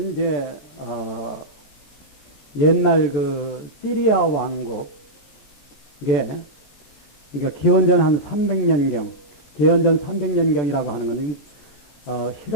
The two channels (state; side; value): late; right; 14 ms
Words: 이제 옛날 그 시리아 왕국, 이게 그러니까 기원전 한 300년경, 기원전 300년경이라고 하는 건